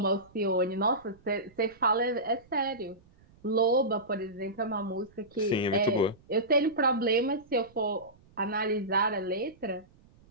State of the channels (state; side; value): noise; right; rumble, 28 dB below the sound